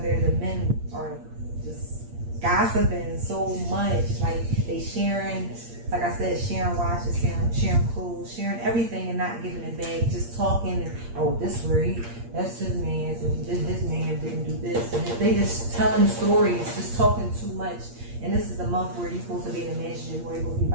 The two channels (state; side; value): late; left; 8.6 ms